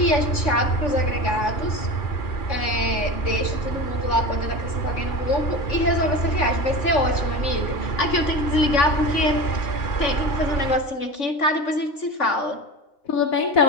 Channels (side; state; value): right; late; 3.5 ms